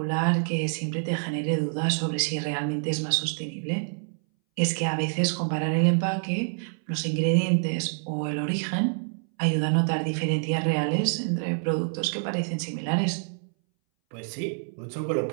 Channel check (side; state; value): left; silent; 60 dB below the other